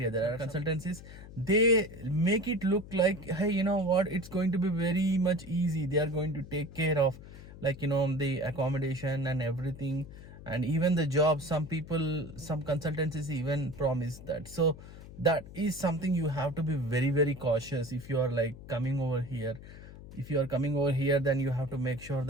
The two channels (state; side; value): noise; left; hum, 16 dB below the sound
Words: there are consultancies. They make it look like, hey, you know what, it's going to be very much easy. They are going to take care of the accommodation and everything, and even the job. Some consultancies even promise that. So that is something you have to be very very cautious if you are like coming over here. If you are coming over here, then you have to make sure